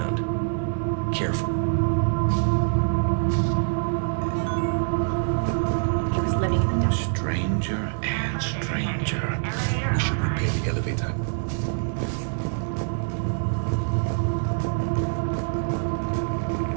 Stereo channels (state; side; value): silent; left; 62 dB below the other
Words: Careful. Stranger and stranger. We should repair the elevator.